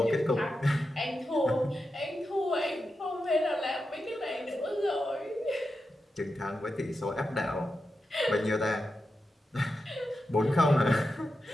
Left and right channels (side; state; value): both; normal; correlation 0.89